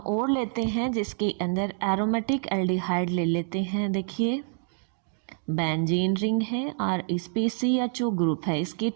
लेते हैं जिसके अंदर एरोमेटिक एल्डिहाइड ले लेते हैं। देखिए बेंजीन रिंग है और इस पे CHO ग्रुप है, इसके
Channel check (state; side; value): silent; left; 60 dB below the other